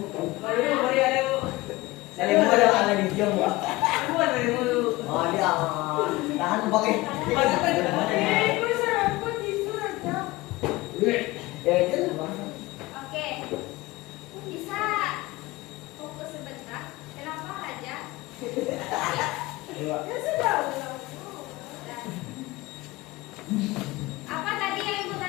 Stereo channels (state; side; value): quieter; right; 20.3 dB